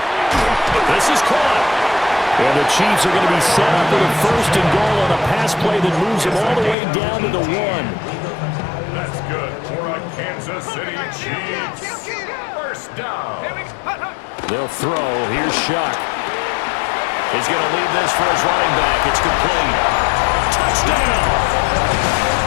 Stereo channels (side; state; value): right; drops out; at 6.8 s